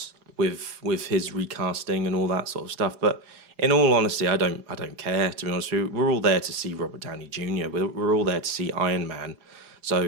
with his recasting and all that sort of stuff. But in all honesty, I don't care, to be honest with you. We're all there to see Robert Downey Jr. We're all there to see Iron Man. So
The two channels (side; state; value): left; late; 4.8 ms